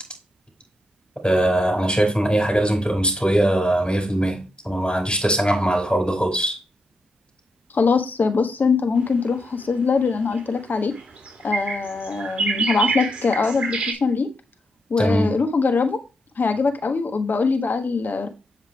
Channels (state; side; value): normal; both; correlation 0.82